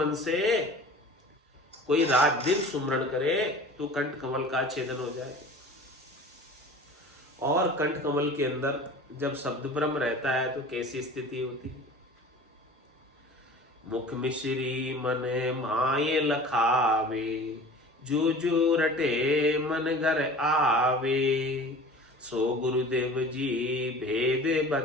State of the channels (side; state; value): both; normal; correlation 0.41